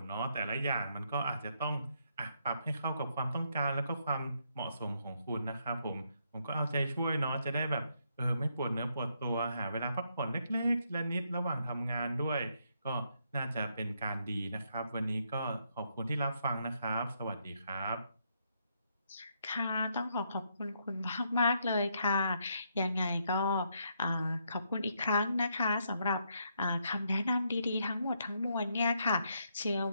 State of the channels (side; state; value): both; inverted; correlation -0.76